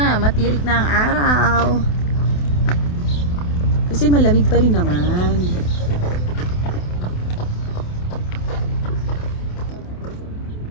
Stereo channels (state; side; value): late; right; 28 ms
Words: matirik na ang araw. Kasi malamig pa rin naman.